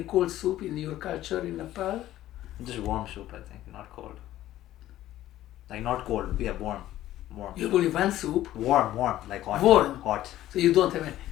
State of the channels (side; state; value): right; quieter; 14.0 dB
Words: cold soup in your culture in Nepal? Just warm soup, I think, not cold. Like not cold, yeah, warm. You have only one soup? Warm, like hot. Warm? Hot. So you don't have any.